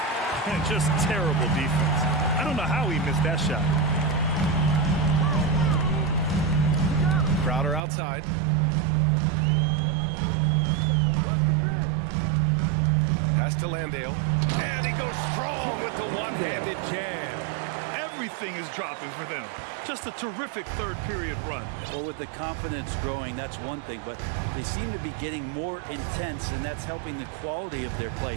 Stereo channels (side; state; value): left; drops out; at 7.8 s